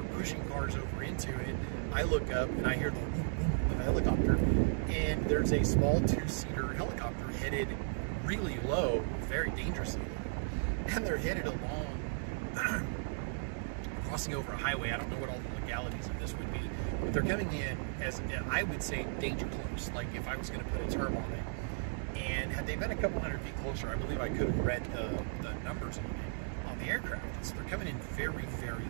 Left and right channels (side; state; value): left; silent; digital silence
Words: pushing cars over into it, I look up and I hear the boom boom of a helicopter, and there's a small two-seater helicopter headed really low, very dangerously low, and they're headed along crossing over a highway. I don't know what all the legalities of this would be, but they're coming in as, I would say, danger close, like if I was going to put a term on it. And had they been a couple hundred feet closer, I believe I could have read the numbers on the aircraft. So they're coming in very, very